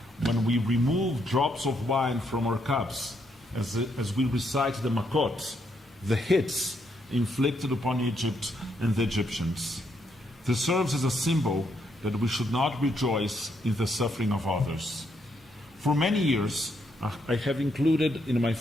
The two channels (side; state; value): both; normal; correlation 0.76